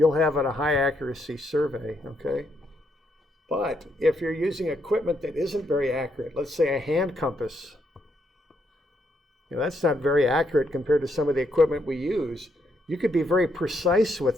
have a high accuracy survey, okay? But if you're using equipment that isn't very accurate, let's say a hand compass, that's not very accurate compared to some of the equipment we use. You could be very precise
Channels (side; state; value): both; normal; correlation 0.76